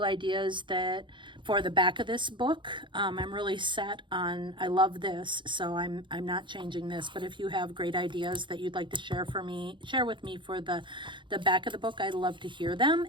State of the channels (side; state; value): left; late; 0.23 ms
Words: ideas that for the back of this book, I'm really set on, I love this, so I'm not changing this. But if you have great ideas that you'd like to share with me for the back of the book, I'd love to hear them.